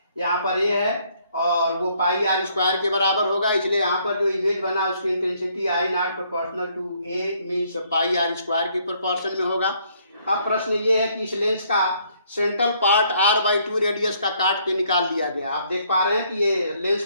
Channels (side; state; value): both; inverted; correlation -0.67